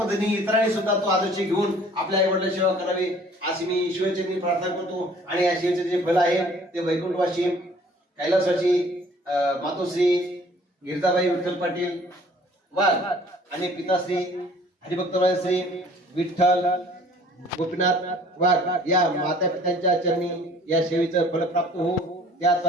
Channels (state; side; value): normal; both; correlation 0.53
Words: इतरांनी सुद्धा तो आदर्श घेऊन आपल्या आई वडिलांची सेवा करावी अशी मी ईश्वरचरणी प्रार्थना करतो. आणि या सेवेचे जे फल आहे ते वैकुंठवासी कैलासवासी मातोश्री गिरजाबाई विठ्ठल पाटील वाघ आणि पिताश्री हरिभक्तराय श्री विठ्ठल गोपीनाथ वाघ या माता पित्यांच्या चरणी या सेवेचं फल प्राप्त हो.